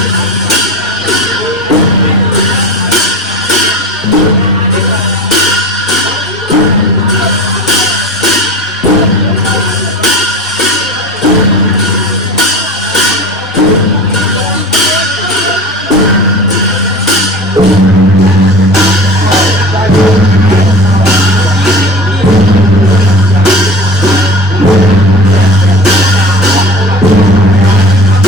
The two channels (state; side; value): normal; both; correlation 0.35